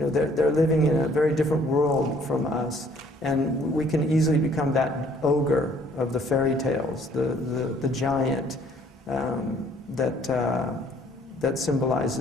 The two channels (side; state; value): both; normal; correlation 0.60